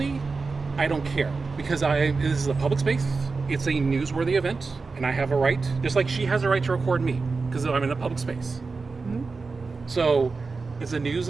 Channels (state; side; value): quieter; left; 4.3 dB